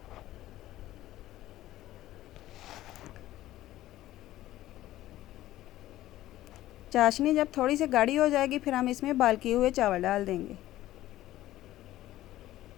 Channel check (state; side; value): quieter; right; 14.9 dB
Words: चाशनी जब थोड़ी सी गाढ़ी हो जाएगी, फिर हम इसमें बॉयल किए हुए चावल डाल देंगे।